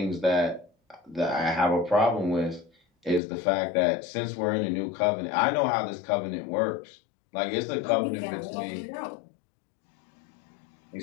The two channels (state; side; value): drops out; right; at 3.2 s